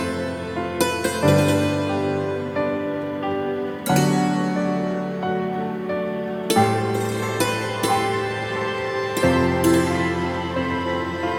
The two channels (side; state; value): both; identical; correlation 1.00